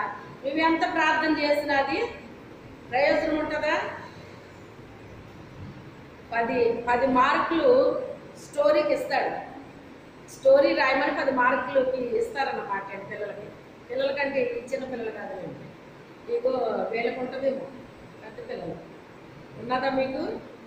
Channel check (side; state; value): both; identical; correlation 1.00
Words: నువ్వెంత ప్రార్థన చేసినా అది ప్రయోజనం ఉంటుందా? 10 మార్కులు స్టోరీకి ఇస్తాడు. స్టోరీ రాయమని 10 మార్కులకి ఇస్తారన్నమాట పిల్లలకంటే చిన్న పిల్లలు కాదండి. మీకు వీళ్ళకు ఉంటుందేమో, పెద్ద పిల్లలు ఉన్నదా? మీకు